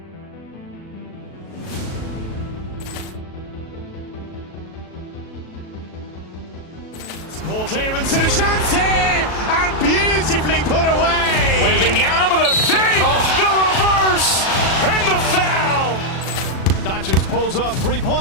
Ball clearance and a chance here, and beautifully put away. Wembanyama the fake, the reverse, and the foul. Doncic pulls up,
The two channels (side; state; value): right; late; 37 ms